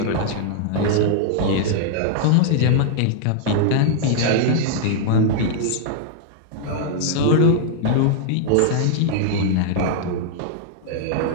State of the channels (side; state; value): both; different; correlation -0.01